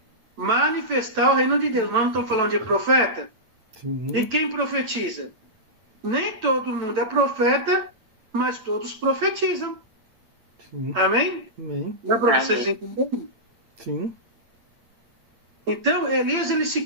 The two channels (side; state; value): left; late; 9.0 ms